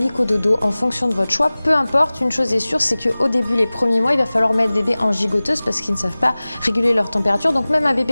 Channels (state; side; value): inverted; both; correlation -0.99